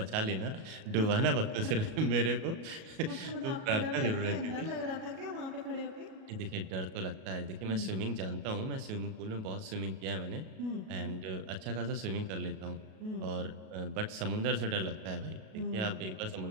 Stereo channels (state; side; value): late; left; 37 ms